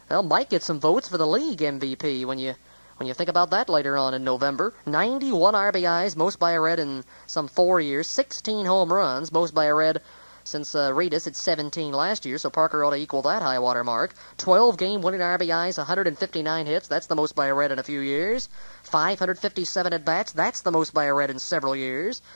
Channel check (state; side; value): inverted; both; correlation -1.00